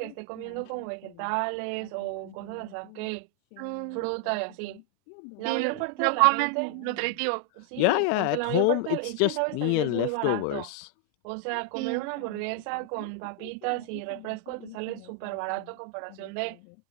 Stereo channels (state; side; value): different; both; correlation 0.00